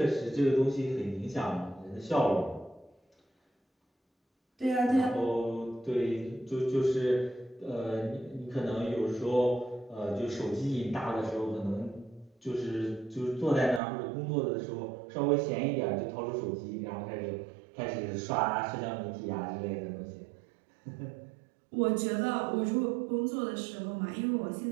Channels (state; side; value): drops out; left; at 13.8 s